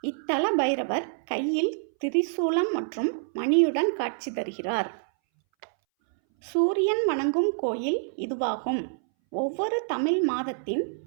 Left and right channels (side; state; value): left; silent; 60 dB below the other